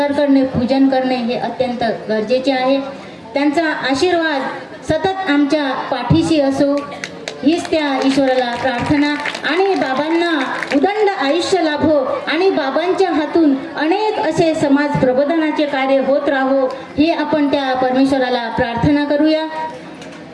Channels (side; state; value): both; identical; correlation 1.00